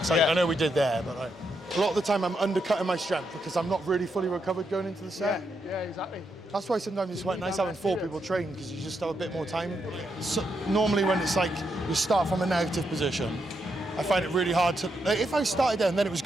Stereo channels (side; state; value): both; normal; correlation 0.81